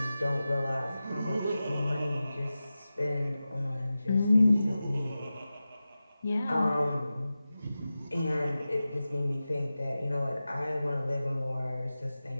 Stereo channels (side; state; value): both; inverted; correlation -0.95